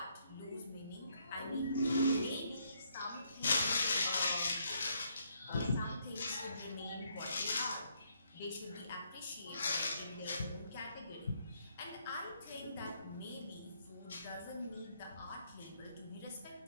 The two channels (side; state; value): both; inverted; correlation -0.72